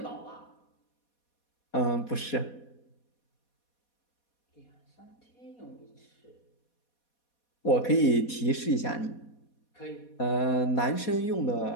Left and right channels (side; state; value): right; late; 4.2 ms